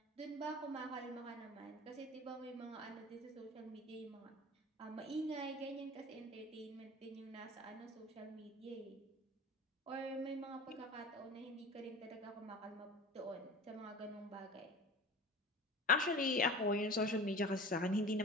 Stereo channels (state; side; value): normal; both; correlation 0.37